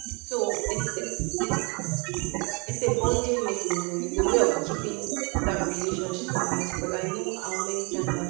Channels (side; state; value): left; quieter; 31.5 dB